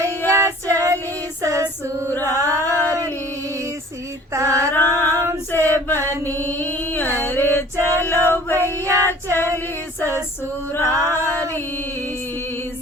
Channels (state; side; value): normal; both; correlation 0.48